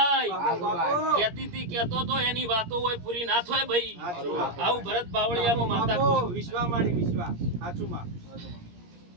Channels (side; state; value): left; late; 17 ms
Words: કેતી તી કેતો તો એની વાતો હોય પૂરી ના થાય ભાઈ. આવું ભરત બાવળિયામાં માતા વિશ્વા માડી વિશ્વા સાચું માં